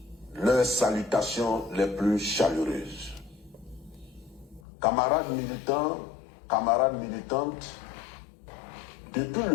leurs salutations les plus chaleureuses. Camarades militants, camarades militantes, depuis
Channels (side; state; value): right; drops out; at 4.6 s